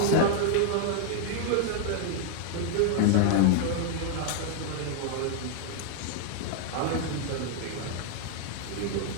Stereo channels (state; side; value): different; both; correlation 0.00